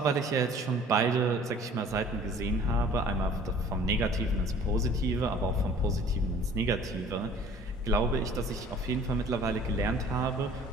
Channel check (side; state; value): both; normal; correlation 0.50